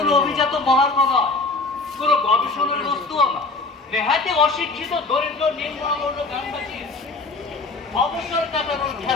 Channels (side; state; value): right; quieter; 3.5 dB